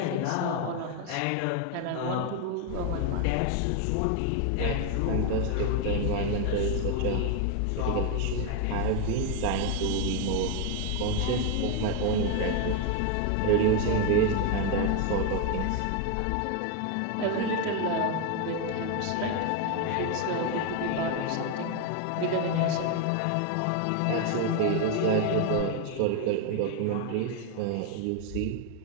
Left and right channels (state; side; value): different; both; correlation 0.01